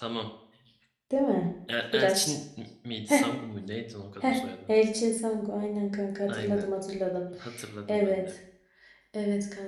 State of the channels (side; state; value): both; identical; correlation 1.00